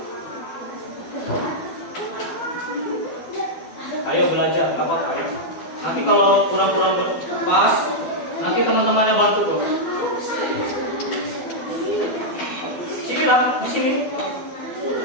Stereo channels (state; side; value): late; right; 12 ms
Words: Ayo belajar, gak apa-apa ya. Nanti kalau kurang-kurang pas, nanti teman-temannya bantu kok. Sini lah, di sini.